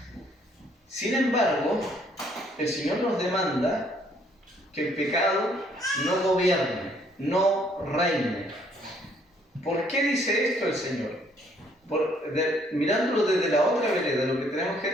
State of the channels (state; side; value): normal; both; correlation 0.65